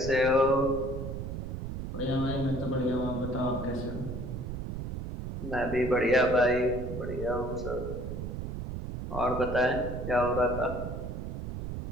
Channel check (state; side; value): noise; right; rumble, 6 dB below the sound